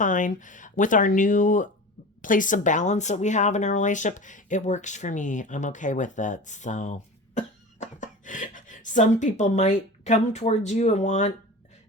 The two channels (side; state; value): both; normal; correlation 0.34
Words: with our new place of balance that we have in our relationship. It works for me. I'm okay with it. So some people might come towards you and want,